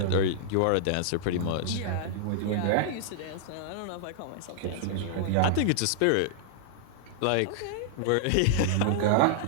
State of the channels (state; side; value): different; both; correlation -0.01